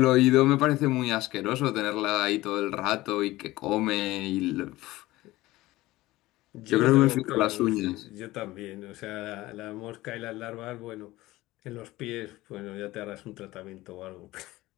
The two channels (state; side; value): quieter; right; 18.1 dB